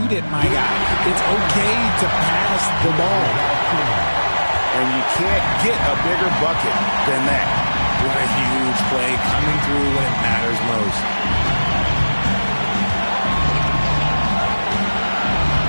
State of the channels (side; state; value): both; inverted; correlation -1.00